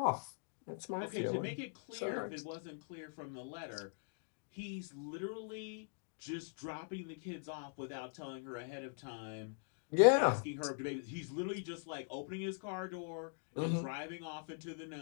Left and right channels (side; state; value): right; silent; digital silence